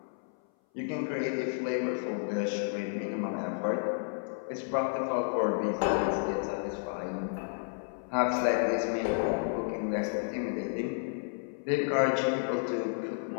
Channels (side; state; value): right; silent; 56 dB below the other